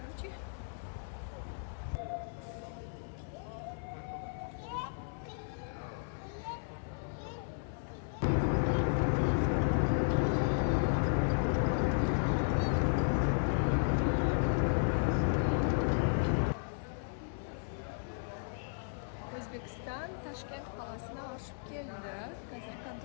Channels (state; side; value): silent; right; 55 dB below the other